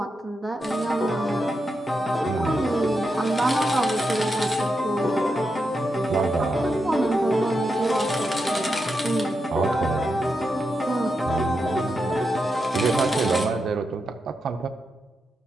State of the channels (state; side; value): normal; both; correlation 0.86